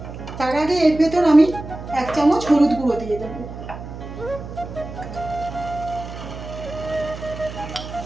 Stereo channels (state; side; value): noise; right; hum, 11 dB below the sound